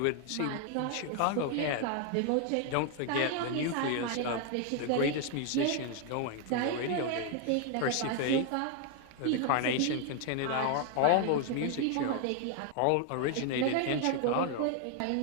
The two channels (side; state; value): both; different; correlation 0.00